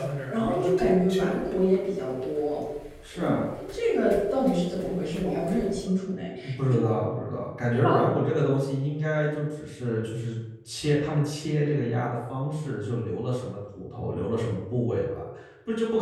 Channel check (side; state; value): both; identical; correlation 1.00